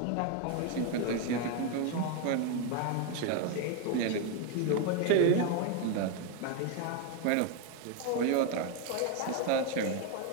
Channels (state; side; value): different; both; correlation 0.01